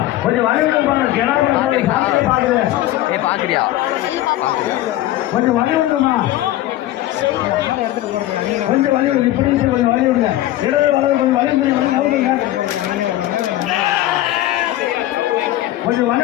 கொஞ்சம் வழி விடுப்பாங்க பாக்குறியா கொஞ்சம் வழி விடுமா கொஞ்சம் வழி விடுங்க இப்படி கொஞ்சம் வழி விடுங்க இடது வலது கொஞ்சம் வழி விடுங்க கொஞ்சம் வழி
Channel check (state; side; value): quieter; right; 14.8 dB